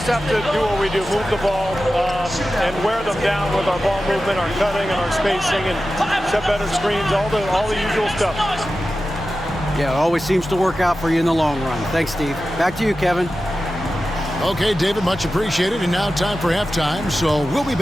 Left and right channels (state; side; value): normal; both; correlation 0.93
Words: have to do what we do, move the ball and wear them down with our ball movement, our cutting, and our spacing, and set better screens, all the usual stuff. Yeah, it always seems to work out for you in the long run. Thanks, Steve. Back to you, Kevin. Okay, David, much appreciated. And now time for halftime, so we'll be